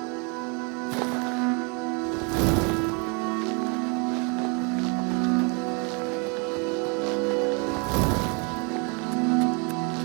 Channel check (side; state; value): left; quieter; 33.3 dB